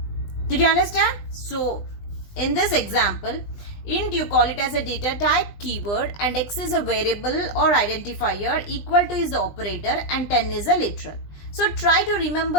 Did you understand? So in this example, int you call it as a data type keyword and x is a variable or identifier, equal to is the operator and 10 is a literal. So try to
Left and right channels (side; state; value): right; late; 20 ms